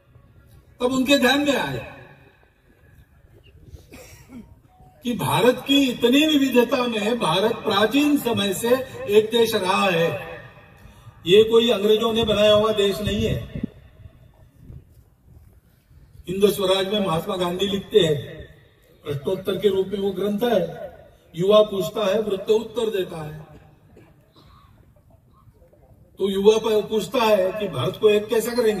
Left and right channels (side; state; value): both; identical; correlation 1.00